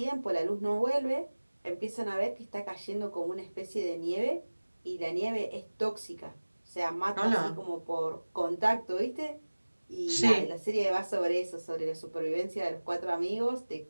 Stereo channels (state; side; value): inverted; both; correlation -1.00